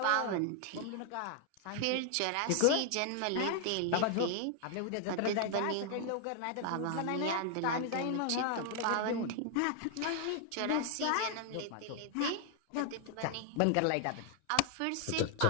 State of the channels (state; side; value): different; both; correlation 0.00